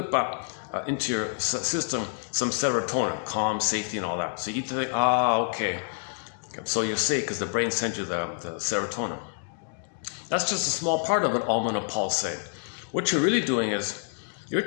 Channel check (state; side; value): silent; right; digital silence